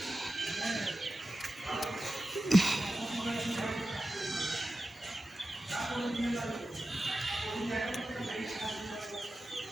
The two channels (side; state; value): both; normal; correlation 0.92